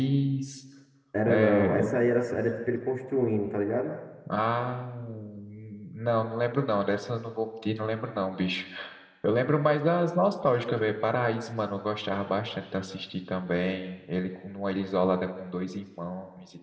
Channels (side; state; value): both; identical; correlation 1.00